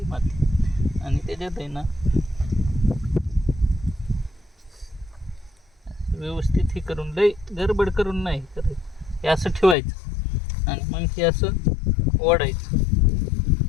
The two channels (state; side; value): drops out; right; at 9.8 s